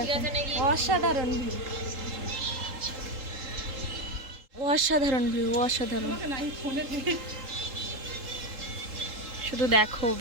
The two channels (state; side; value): late; left; 3.8 ms